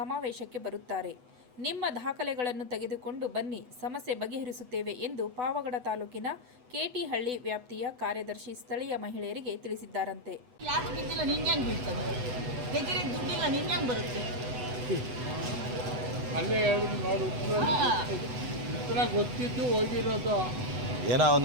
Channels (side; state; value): left; late; 8.0 ms